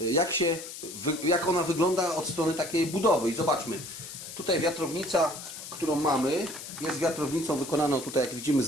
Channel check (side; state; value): left; noise; hiss, 11 dB below the sound